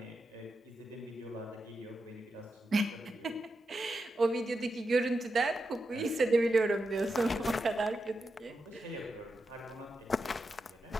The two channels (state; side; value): normal; both; correlation 0.88